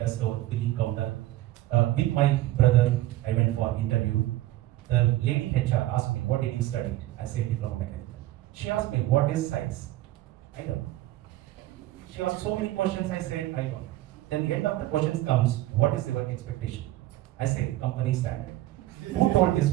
store, billing counter. With my brother, I went for interview. The lady HR asked me, what did you study? I said, diploma mechanical. She asked me, what is science? I don't know. She asked so many questions, I said, I don't know. Then the end of the questions comes, what is your expectation? I said, company standard. Who told this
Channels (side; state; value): left; quieter; 15.8 dB